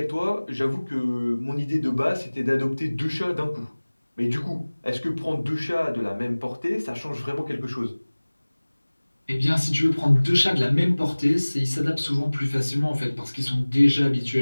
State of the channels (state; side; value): inverted; both; correlation -1.00